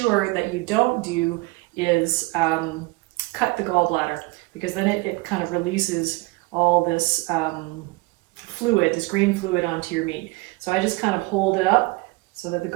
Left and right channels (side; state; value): left; quieter; 23.4 dB